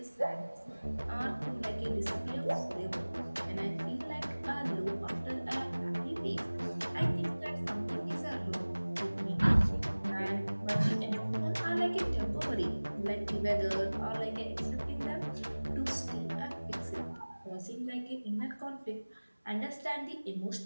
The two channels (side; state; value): both; inverted; correlation -1.00